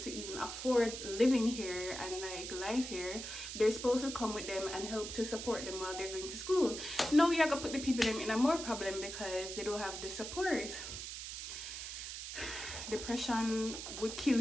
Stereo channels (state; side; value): noise; right; hiss, 7 dB below the sound